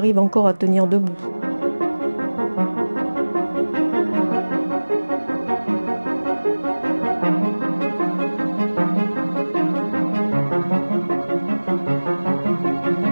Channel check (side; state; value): both; inverted; correlation -1.00